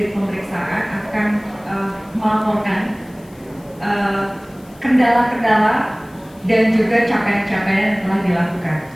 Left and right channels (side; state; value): left; noise; hiss, 28 dB below the sound